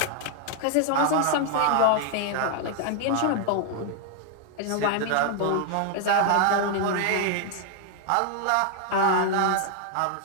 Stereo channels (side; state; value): both; different; correlation 0.00